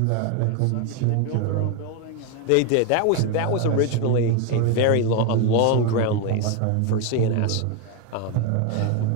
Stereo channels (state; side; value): different; both; correlation 0.01